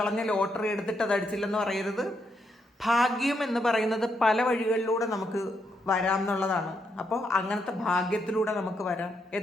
ലോട്ടറി എടുത്തിട്ട് അത് അടിച്ചില്ലെന്ന് പറയരുത്. ഭാഗ്യം എന്ന് പറയുന്നത് പല വഴികളിലൂടെ നമുക്ക് വരാം എന്നുള്ളതാണ്. അപ്പോൾ അങ്ങനത്തെ ഭാഗ്യത്തിലൂടെ നമുക്ക് വരാം.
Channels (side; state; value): both; normal; correlation 0.79